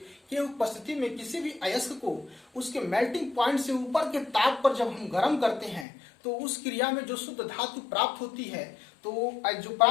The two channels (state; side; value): drops out; right; at 5.9 s